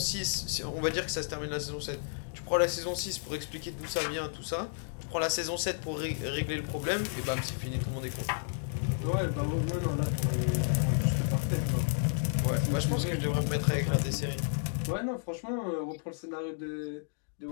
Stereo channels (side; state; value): right; silent; digital silence